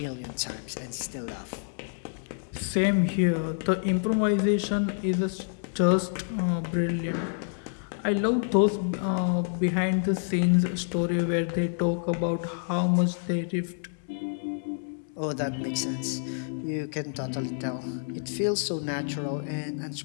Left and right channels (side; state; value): right; silent; digital silence